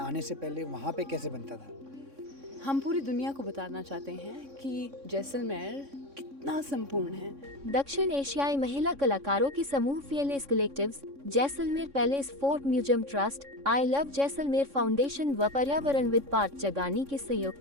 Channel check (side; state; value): left; late; 3.6 ms